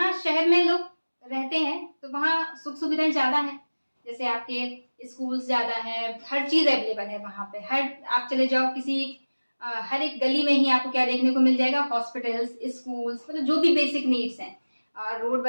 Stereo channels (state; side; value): inverted; both; correlation -1.00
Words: शहर में लोग रहते हैं तो वहाँ सुख सुविधाएं ज्यादा हैं, जैसे आपके स्कूल्स ज्यादा हैं, हर चीज अवेलेबल है वहां पे। आप चले जाओ किसी हर एक गली में ही आपको क्या देखने को मिल जाएगा, हॉस्पिटल्स, स्कूल्स, मतलब जो भी बेसिक नीड्स हैं, रोड